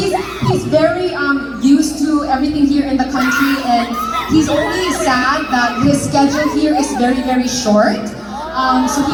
very used to everything here in the country, and he's only sad that his schedule here is very, very short. So he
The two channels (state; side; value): identical; both; correlation 1.00